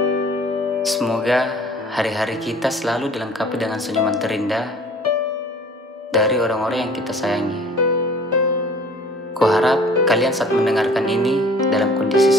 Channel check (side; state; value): both; normal; correlation 0.49